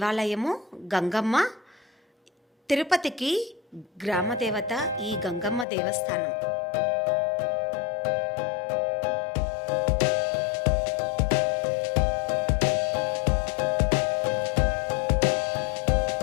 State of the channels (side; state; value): right; drops out; at 5.7 s